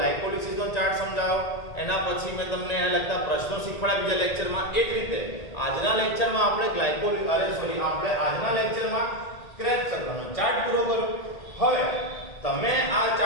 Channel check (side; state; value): right; late; 1.8 ms